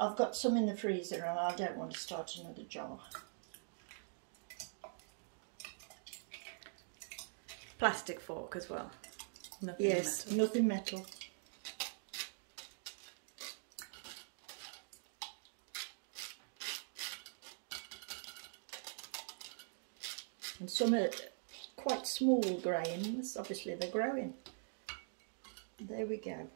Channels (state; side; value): silent; left; digital silence